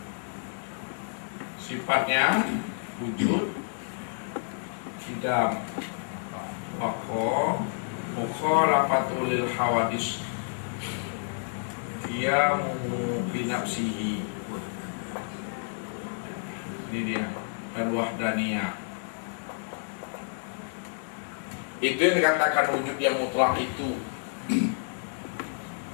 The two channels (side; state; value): right; silent; 58 dB below the other